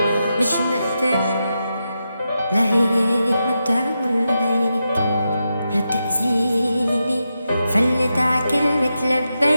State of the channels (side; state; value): both; inverted; correlation -0.87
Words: مش مثلن. لا هيك ما بتعمل هيك لا تأذيني، فلت ع كلمة